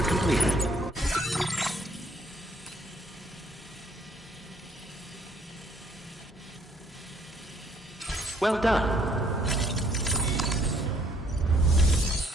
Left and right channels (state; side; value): normal; both; correlation 0.65